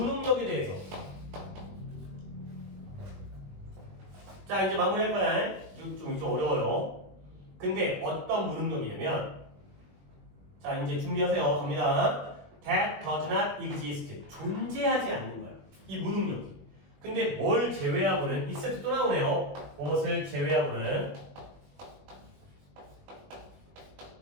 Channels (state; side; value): late; left; 21 ms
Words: 대해서 자 이제 마무리할 거야. 좀 어려워요. 근데 어떤 무능력이냐면 자 이제 준비하세요. 갑니다. That does not exist. 존재하지 않는 거야. 이 무능력이. 근데 뭘 제외하고는 이 세트 또 나오네요. 무엇을 제외하고는